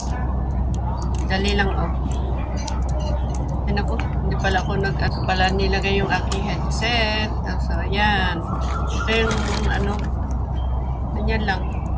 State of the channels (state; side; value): identical; both; correlation 1.00